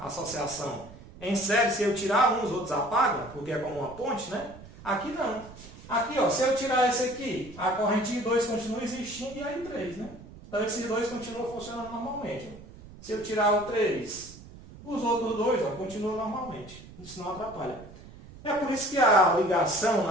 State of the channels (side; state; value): right; noise; rumble, 18 dB below the sound